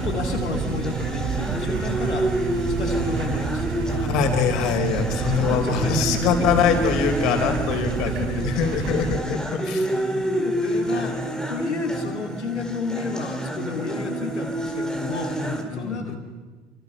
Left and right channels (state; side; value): normal; both; correlation 0.53